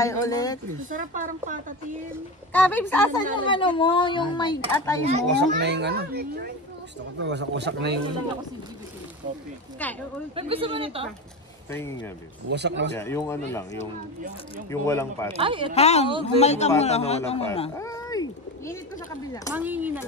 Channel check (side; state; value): both; normal; correlation 0.23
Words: ulit. Masarap parang patatin. Kabibs, asan yung ano mo? Yung may atay mo? Wasak na yung ano. Gusto ko to, wasak-wasak na yung ano. Gusto mo nito? Tingin nga, Bis. Wasak na wasak. Yeah, yung ano lang, yung walang pata. Ay, ito. Hang, humal ka muna. Pata na Humal ka walang muna. pata. Ay! Init ko sa kabila. Mangingi na